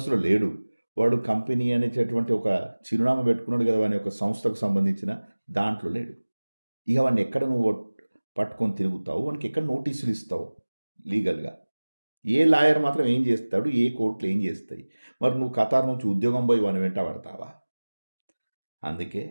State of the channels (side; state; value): both; inverted; correlation -1.00